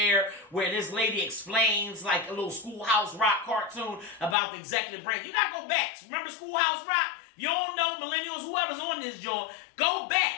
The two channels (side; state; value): right; drops out; at 4.4 s